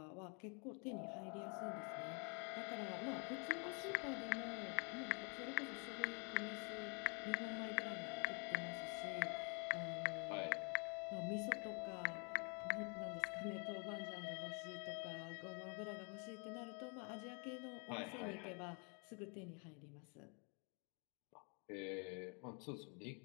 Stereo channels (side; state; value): right; quieter; 36.3 dB